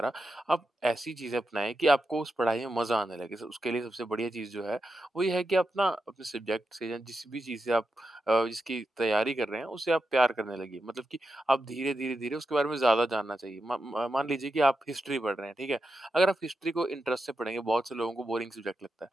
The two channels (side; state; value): both; normal; correlation 0.88